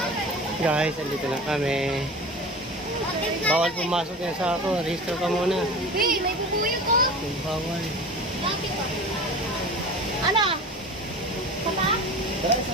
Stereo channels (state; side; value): normal; both; correlation 0.35